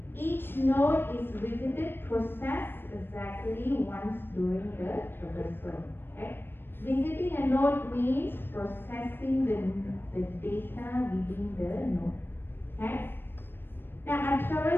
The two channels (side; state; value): right; late; 0.099 ms